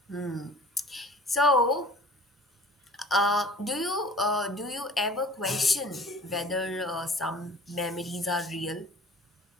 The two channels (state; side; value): normal; both; correlation 0.46